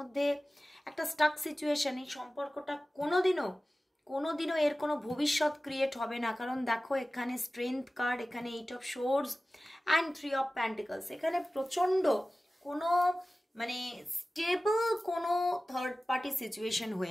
একটা স্টাক সিচুয়েশন, এই সম্পর্কটা কোনোদিনও কোনোদিনও এর কোনো ভবিষ্যৎ ক্রিয়েট হবে না। কারণ দেখো এখানে স্ট্রেংথ কার্ড, এখানে 8 of swords and 3 of pentacles. এখানে প্রচণ্ড কোনো মানে স্টেবল কোনো থার্ড পার্টি সিচুয়েশন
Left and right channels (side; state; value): both; normal; correlation 0.96